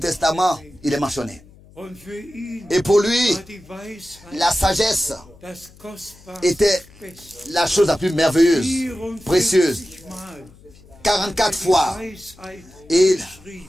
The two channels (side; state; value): left; noise; hum, 24 dB below the sound